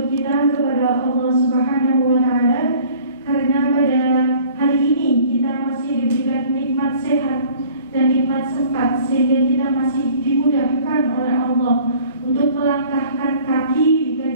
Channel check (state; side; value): inverted; both; correlation -0.51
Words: kita kepada Allah Subhanahu wa Ta'ala, karena pada hari ini kita masih diberikan nikmat sehat dan nikmat sempat, sehingga kita masih dimudahkan oleh Allah untuk melangkahkan kaki di